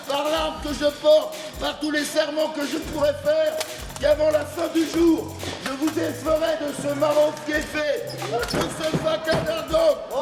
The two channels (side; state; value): both; identical; correlation 1.00